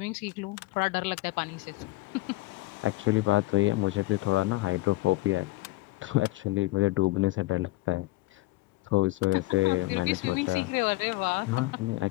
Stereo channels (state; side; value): quieter; right; 19.7 dB